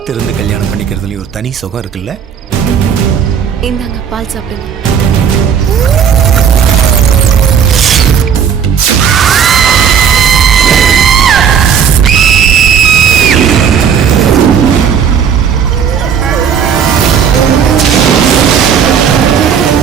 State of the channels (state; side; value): quieter; left; 7.6 dB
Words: கல்யாணம் பண்ணிக்கிறதுலயும் ஒரு தனி சுகம் இருக்குல்ல. இந்தாங்க பால் சாப்பிடுங்க.